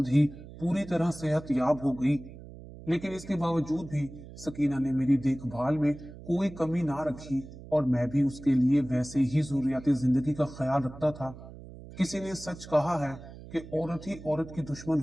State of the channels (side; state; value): right; noise; hum, 16 dB below the sound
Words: ही पूरी तरह सेहत याब हो गई। लेकिन इसके बावजूद भी सकीना ने मेरी देखभाल में कोई कमी ना रखी, और मैं भी उसके लिए वैसे ही जरूरियाती जिंदगी का ख्याल रखता था। किसी ने सच कहा है कि औरत ही औरत की दुश्मन